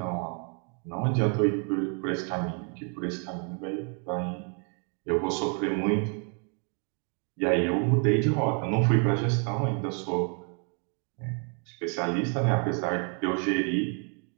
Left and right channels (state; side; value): quieter; left; 39.7 dB